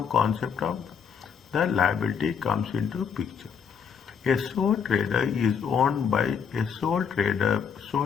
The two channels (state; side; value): quieter; right; 6.9 dB